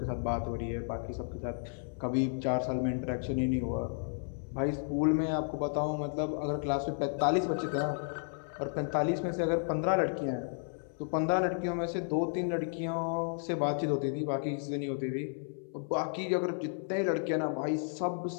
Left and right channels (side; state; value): right; silent; 56 dB below the other